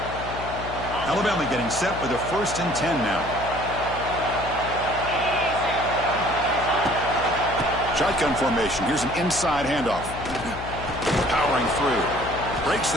Alabama getting set with a first and 10 now. Shotgun formation. Here's an inside handoff. Powering through. Breaks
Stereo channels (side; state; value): left; noise; hum, 10 dB below the sound